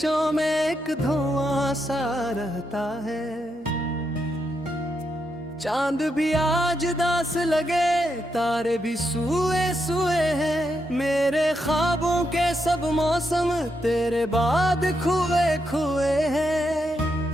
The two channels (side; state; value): both; normal; correlation 0.82